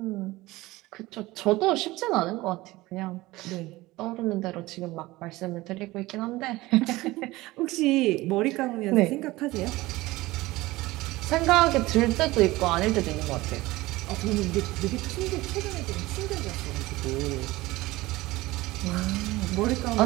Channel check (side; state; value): left; quieter; 19.3 dB